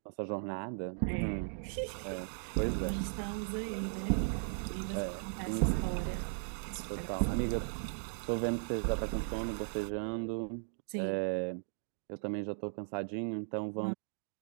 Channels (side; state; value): left; silent; digital silence